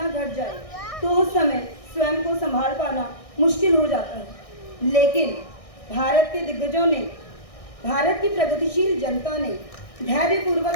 घट जाए, तो उस समय स्वयं को संभाल पाना मुश्किल हो जाता है। लेकिन भारत के दिग्गजों ने, भारत की प्रगतिशील जनता ने धैर्यपूर्वक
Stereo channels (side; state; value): right; late; 1.6 ms